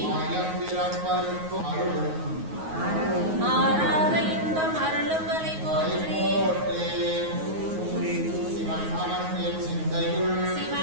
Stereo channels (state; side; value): late; left; 9.4 ms